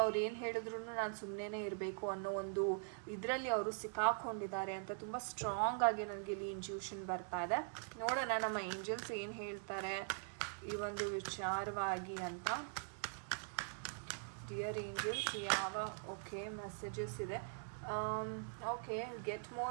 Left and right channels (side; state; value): left; silent; digital silence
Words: ಅವ್ರು ಏನು ಹೇಳಿದ್ರು ನಾನು ಸುಮ್ಮನೆ ಇರಬೇಕು ಅನ್ನೋ ಒಂದು ಇದರಲ್ಲಿ ಅವರು ಸಿಕ್ಕಾಕೊಂಡಿದ್ದಾರೆ ಅಂತ ತುಂಬ ಸ್ಟ್ರಾಂಗ್ ಆಗಿ ನನಗೆ ಇಲ್ಲಿ ಇಂಟ್ಯೂಷನ್ ಬರ್ತಾ ಇದೆ. ನೋಡೋಣ ನಮ್ಮ ಏಂಜಲ್ಸ್ ಏನು ಹೇಳ್ತಾರೆ ಈ ಒಂದು ವಿಚಾರವಾಗಿ ಅಂತ. ಡಿಯರ್ ಏಂಜಲ್ಸ್, ಯಾವ ಮೆಸೇಜಸ್ ಇದೆ? Okay, get